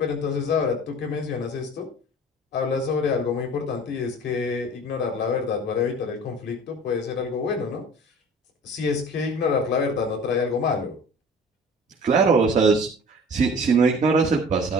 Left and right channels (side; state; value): both; normal; correlation 0.44